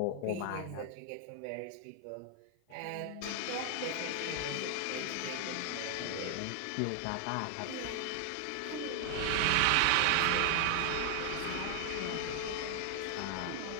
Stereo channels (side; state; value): both; different; correlation 0.00